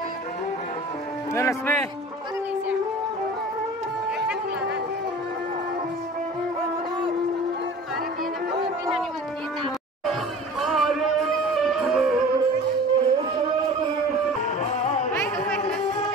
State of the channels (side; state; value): both; normal; correlation 0.41